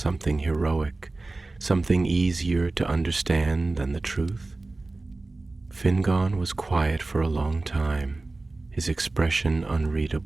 heroic, something easier to understand than the truth?" Fingon was quiet for a long time, his expression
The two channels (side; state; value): left; quieter; 3.2 dB